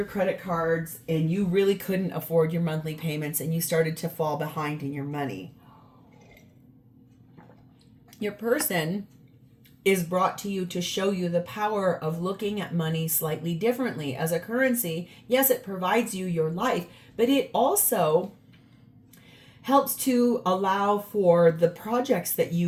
credit cards and you really couldn't afford your monthly payments and you started to fall behind in your money. Your person is brought to you to show you the power of looking at money slightly differently. As a currency, yes, it provides you your life, but it also helps to allow for the projects that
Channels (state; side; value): identical; both; correlation 1.00